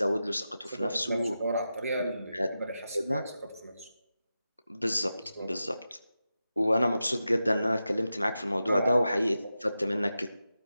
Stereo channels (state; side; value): inverted; both; correlation -0.91